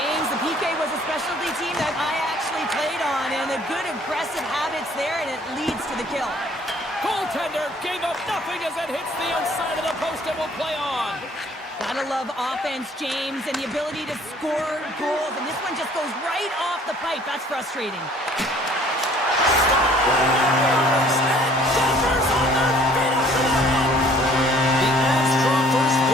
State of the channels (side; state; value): both; normal; correlation 0.57